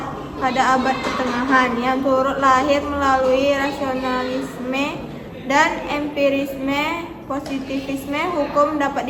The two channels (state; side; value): identical; both; correlation 1.00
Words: pada abad pertengahan, yang turut lahir melalui rasionalisme dan empirisme. Positivisme hukum